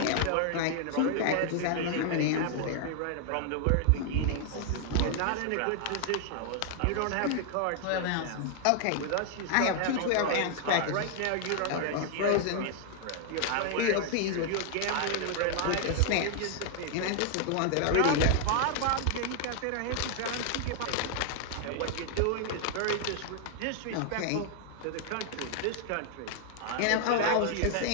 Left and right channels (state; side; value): different; both; correlation 0.00